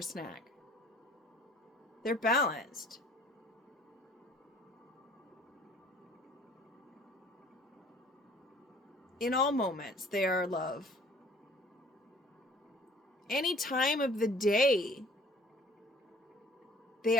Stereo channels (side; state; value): both; normal; correlation 0.53